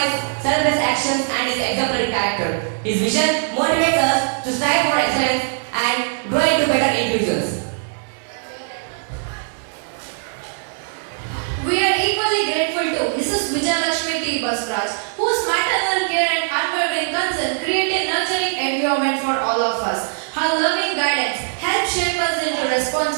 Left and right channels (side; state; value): left; silent; digital silence